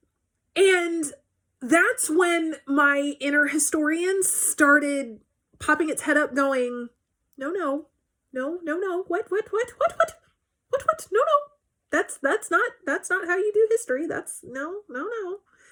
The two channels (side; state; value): both; identical; correlation 1.00